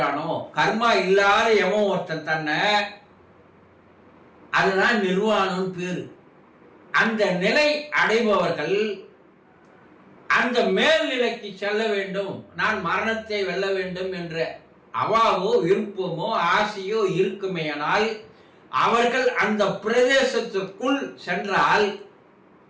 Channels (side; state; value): both; identical; correlation 1.00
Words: கர்மா இல்லாத எவன் ஒருத்தன் தன்னை, அதுதான் நிர்வாணம் பேரு. அந்த நிலை அடைபவர்கள் அந்த மேல்நிலைக்கு செல்ல வேண்டும், நான் மரணத்தை வெல்ல வேண்டும் என்ற அவாவோ விருப்பமோ ஆசையோ இருக்குமேயானால் அவர்கள் அந்த பிரதேசத்திற்குள் சென்றால்